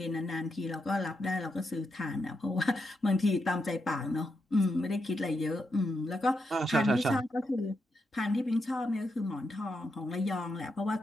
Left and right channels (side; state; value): both; normal; correlation 0.83